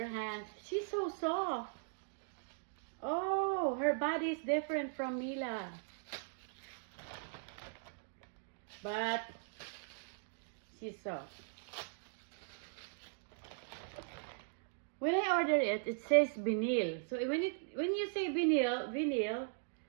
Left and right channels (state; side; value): silent; left; digital silence